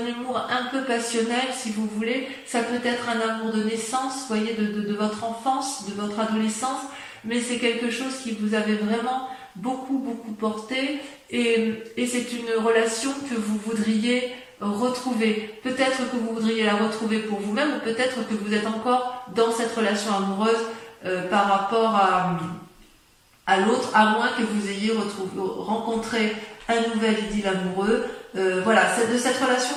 humour un peu passionnel, si vous voulez. Ça peut être un amour de naissance, vous voyez, de votre enfance, de votre adolescence, mais c'est quelque chose qui vous avait vraiment beaucoup porté, et c'est une relation que vous voudriez retrouver. Peut-être que vous voudriez la retrouver pour vous-même, ou peut-être que vous êtes encore dans cette relation amoureuse par rapport à l'autre, à moins que vous ayez rencontré un nouvel idylle amoureux. Voilà, de cette relation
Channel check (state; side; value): identical; both; correlation 1.00